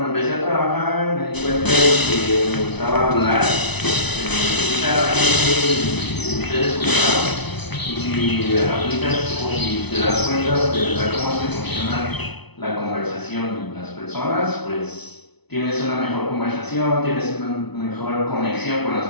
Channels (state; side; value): late; right; 0.99 ms